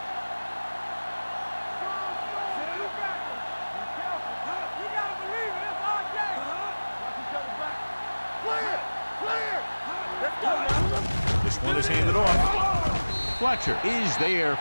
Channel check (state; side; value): inverted; both; correlation -1.00